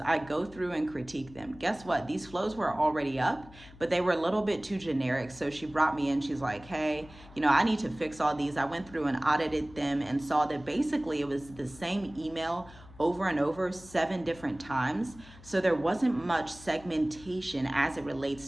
go through and critique them. Guess what? These flows were already up, but they were a little bit too generic. So she brought me in. She's like, hey, I need to fix all these. I went through and audited them and saw that basically it was the same email over and over 7 different times. So there wasn't much segmentation as it relates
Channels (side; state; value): left; noise; hum, 20 dB below the sound